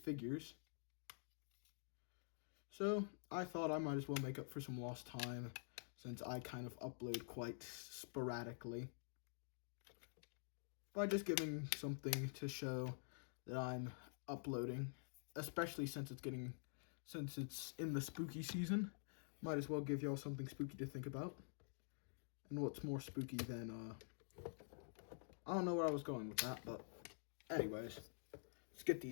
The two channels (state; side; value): silent; right; digital silence